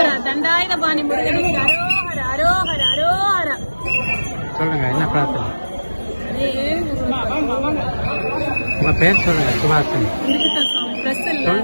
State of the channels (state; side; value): inverted; both; correlation -1.00